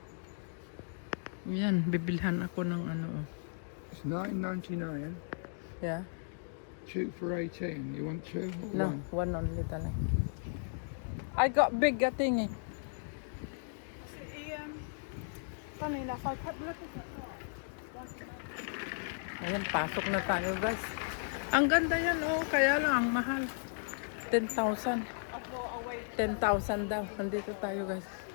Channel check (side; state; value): right; silent; digital silence